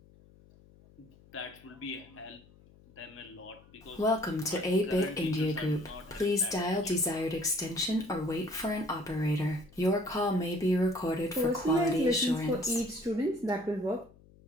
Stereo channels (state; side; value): noise; left; hum, 26 dB below the sound